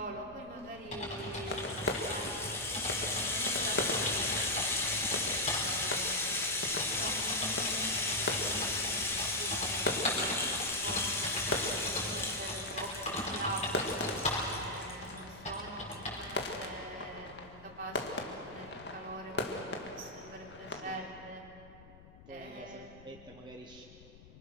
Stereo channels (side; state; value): left; noise; rumble, 20 dB below the sound